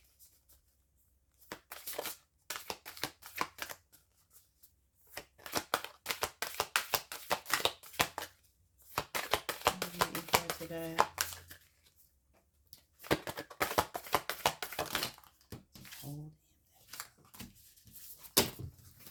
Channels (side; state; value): both; identical; correlation 1.00